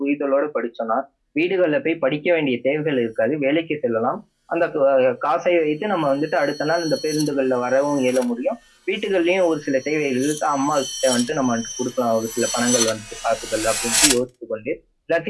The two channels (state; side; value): identical; both; correlation 1.00